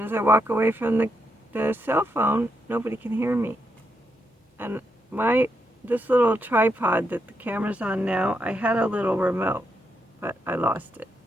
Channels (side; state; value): both; normal; correlation 0.81